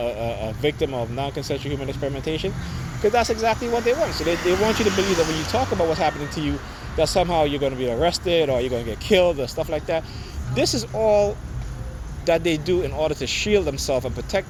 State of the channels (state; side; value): identical; both; correlation 1.00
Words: victim of non-consensual human experimentation? Because that's exactly what they want. So they want you to believe that when you talk about what's happening to you, that somehow you're going to be arrested or you're going to get killed or stuff like that. This is all that they do in order to shield themselves and protect